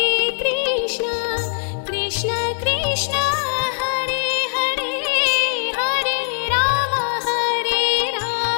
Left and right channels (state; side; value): silent; right; 59 dB below the other